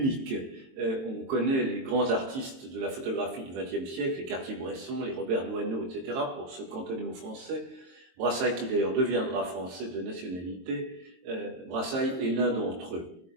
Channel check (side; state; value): left; late; 22 ms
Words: On connaît les grands artistes de la photographie du XXe siècle, les Cartier-Bresson, les Robert Doisneau, etc., pour se cantonner aux Français. Brassai, qui d'ailleurs deviendra français de nationalité, Brassai est l'un d'entre eux.